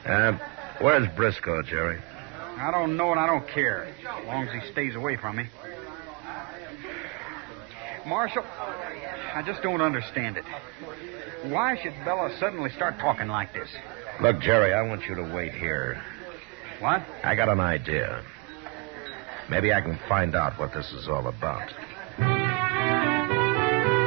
Where's Briscoe, Jerry? I don't know and I don't care, as long as he stays away from me. Marshal, I just don't understand it. Why should Bella suddenly start talking like this? Look, Jerry, I want you to wait here. What? I got an idea. Maybe I can find out what this is all about.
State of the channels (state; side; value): quieter; left; 28.2 dB